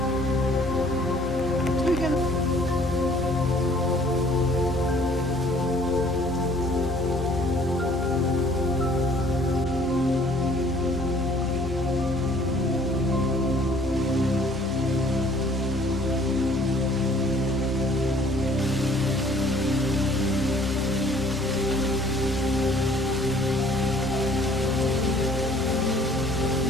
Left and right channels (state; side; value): normal; both; correlation 0.57